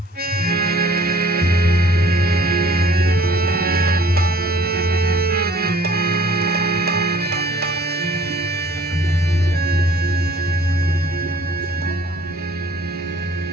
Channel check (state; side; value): normal; both; correlation 0.54